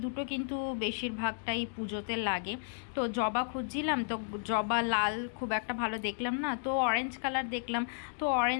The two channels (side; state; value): right; silent; digital silence